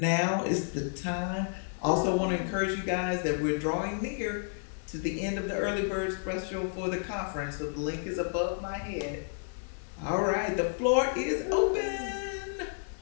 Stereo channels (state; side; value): silent; right; 57 dB below the other